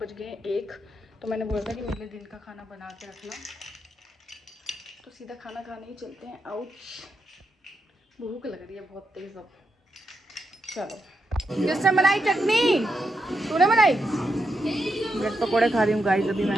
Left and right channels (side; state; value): both; normal; correlation 0.84